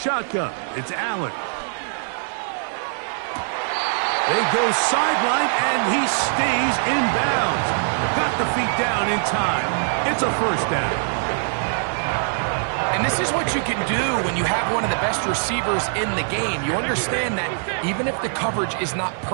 it's Allen. They go sideline, and he stays in bounds. Got the feet down in time. It's a first down. And this is what you can do when you have one of the best receivers in the game. You understand that even if the coverage is not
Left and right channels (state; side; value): silent; left; 56 dB below the other